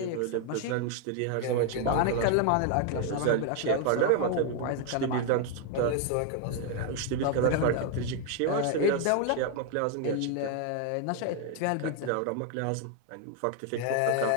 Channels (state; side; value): different; both; correlation 0.00